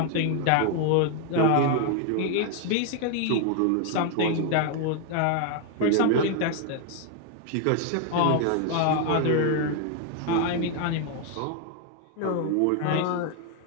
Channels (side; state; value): both; different; correlation 0.00